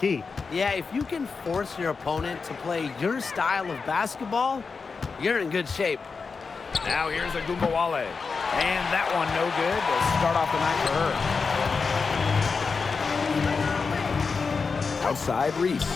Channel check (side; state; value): right; quieter; 4.9 dB